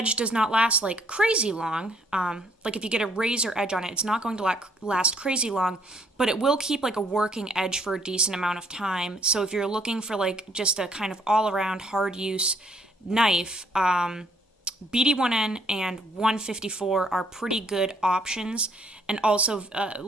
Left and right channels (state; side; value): normal; both; correlation 0.65